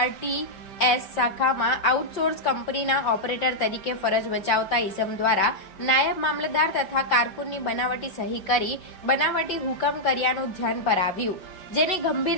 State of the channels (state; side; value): late; right; 5.3 ms